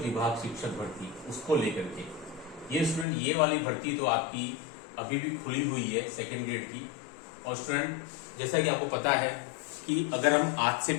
शिक्षक भर्ती उसको लेकर के ये स्टूडेंट, ये वाली भर्ती तो आपकी अभी भी खुली हुई है सेकेंड ग्रेड की। और स्टूडेंट, जैसा कि आपको पता है कि अगर हम आज से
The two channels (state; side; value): drops out; right; at 3.1 s